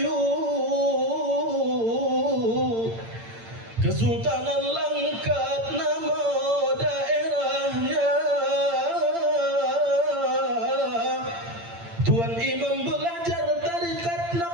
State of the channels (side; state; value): left; late; 8.8 ms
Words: Kesultanan Langkat nama daerahnya. Tuan Imam belajar tarikat